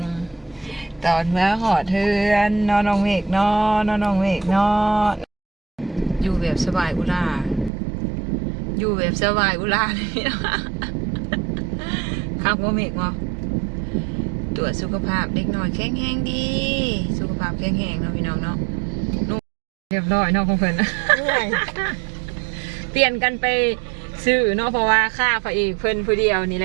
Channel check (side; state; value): left; drops out; at 7.7 s